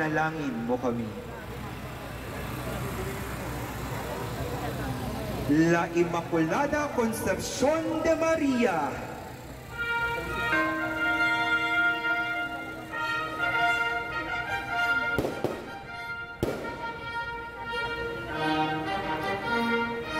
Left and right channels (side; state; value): right; noise; rumble, 28 dB below the sound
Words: mo kami. La Inmaculada Concepción de María.